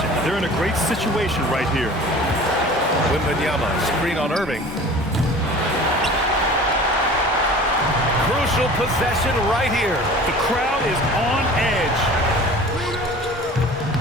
They're in a great situation right here. Wembanyama, screen on Irving. Crucial possession right here. The crowd is on edge.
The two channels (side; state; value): both; normal; correlation 0.42